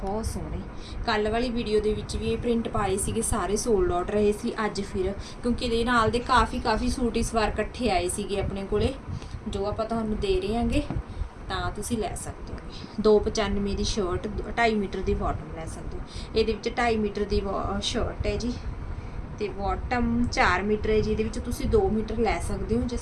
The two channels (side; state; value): both; identical; correlation 1.00